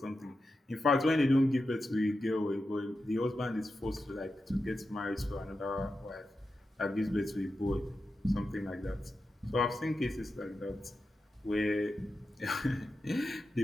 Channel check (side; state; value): both; normal; correlation 0.90